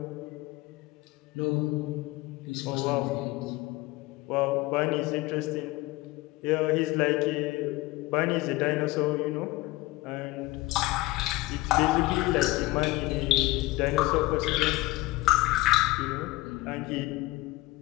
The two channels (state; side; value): quieter; right; 19.9 dB